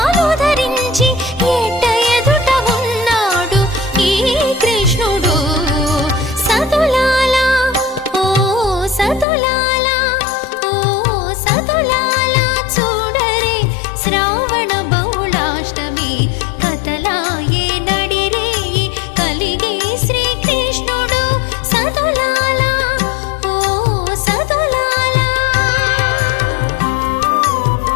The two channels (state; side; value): drops out; right; at 9.2 s